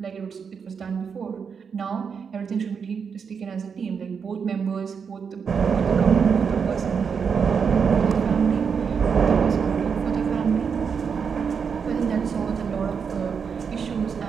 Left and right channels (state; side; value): quieter; left; 6.3 dB